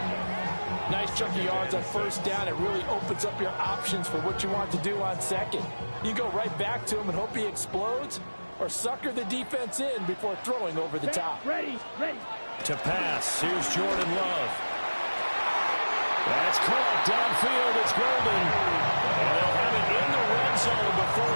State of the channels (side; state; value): both; inverted; correlation -1.00